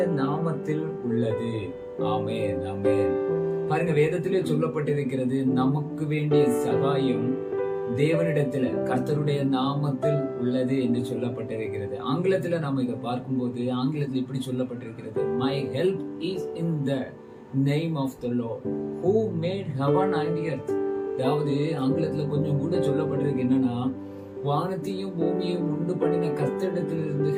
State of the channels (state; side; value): identical; both; correlation 1.00